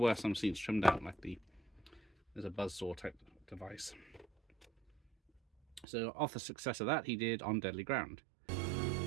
some scenes trimmed out, like there's a buzzsaw type device. So off the success of that, he did On Deadly Ground.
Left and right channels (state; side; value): drops out; left; at 5.9 s